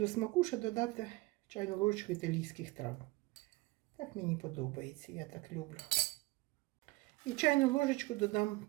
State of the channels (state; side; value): quieter; left; 21.8 dB